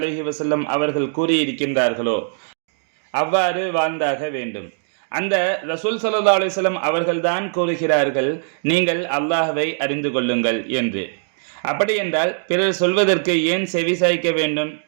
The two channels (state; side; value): silent; left; digital silence